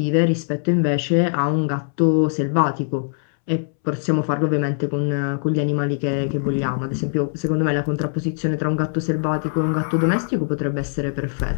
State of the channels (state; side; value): silent; right; 65 dB below the other